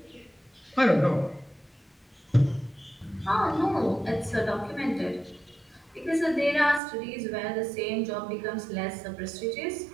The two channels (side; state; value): left; drops out; at 6.8 s